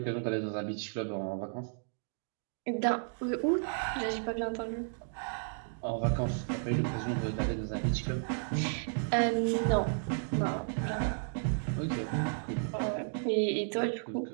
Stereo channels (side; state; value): left; silent; digital silence